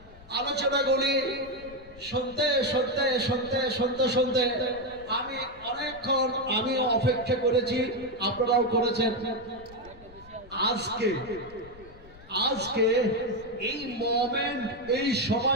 আলোচনাগুলি শুনতে শুনতে শুনতে শুনতে শুনতে আমি অনেকক্ষণ আমিও অপেক্ষা করেছি, আপনারাও করেছেন। আজকে আজকে এই মোমেন্ট, এই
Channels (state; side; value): noise; left; rumble, 21 dB below the sound